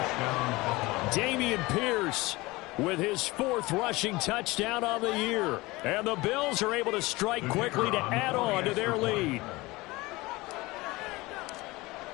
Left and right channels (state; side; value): quieter; right; 21.6 dB